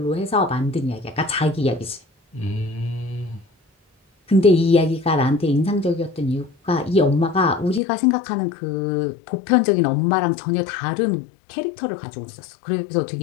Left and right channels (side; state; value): right; drops out; at 7.8 s